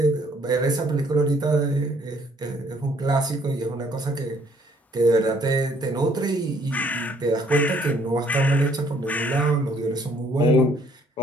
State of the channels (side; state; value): both; normal; correlation 0.63